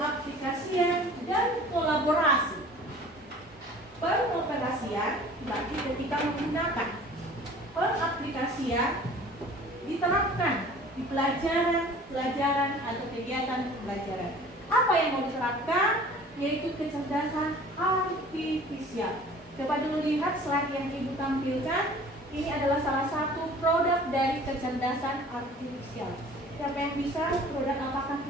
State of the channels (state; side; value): normal; both; correlation 0.47